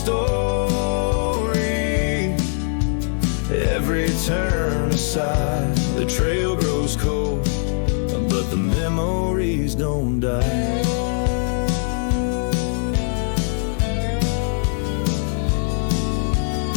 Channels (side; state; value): right; silent; digital silence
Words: every turn aside, the trail grows cold, but the memories don't die.